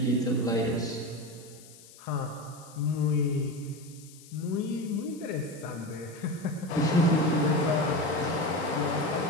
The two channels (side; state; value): left; noise; hiss, 21 dB below the sound